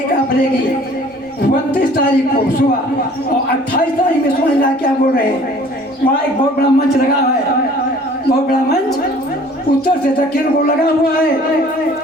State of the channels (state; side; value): normal; both; correlation 0.51